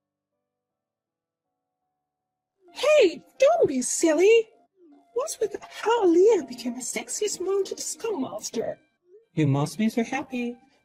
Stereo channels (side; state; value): both; identical; correlation 1.00